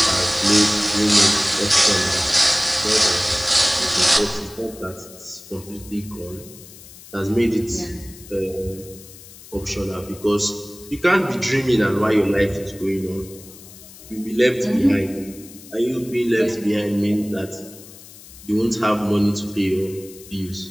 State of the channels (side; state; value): left; noise; hiss, 19 dB below the sound